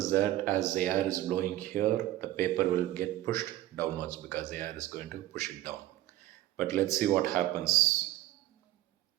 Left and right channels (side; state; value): left; quieter; 15.0 dB